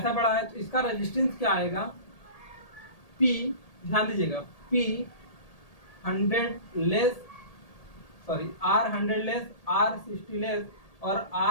बड़ा है। तो इसका रेजिस्टेंस क्या आएगा? P, ध्यान दीजिएगा, P100 less, sorry R100 less, R60 less और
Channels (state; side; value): late; right; 1.8 ms